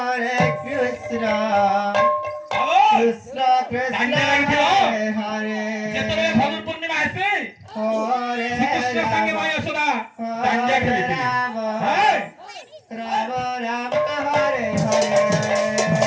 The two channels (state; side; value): identical; both; correlation 1.00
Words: Krishna Krishna Krishna Hare যেতবে ফাল্গুন পূর্ণিমা আছে Hare শ্রীকৃষ্ণের সঙ্গে মা যশোদা দাঙ্গা Hare খেলেছিলেন Rama হ্যাঁ Rama Rama Hare Hare